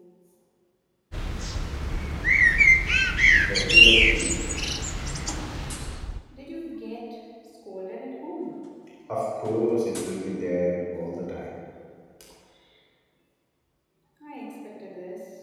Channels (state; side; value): identical; both; correlation 1.00